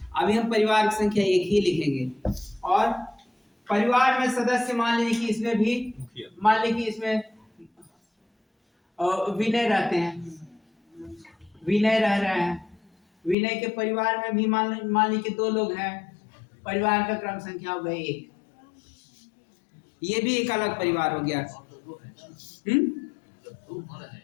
अभी हम परिवार की संख्या 1 ही लिखेंगे। और परिवार में सदस्य मान लीजिए कि इसमें भी, मान लीजिए कि इसमें विनय रहते हैं, विनय रह रहे हैं। विनय के परिवार में भी मान लीजिए कि 2 लोग हैं, परिवार का क्रम संख्या हो गई 1। ये भी एक अलग परिवार हो गया।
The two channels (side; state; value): right; drops out; at 13.4 s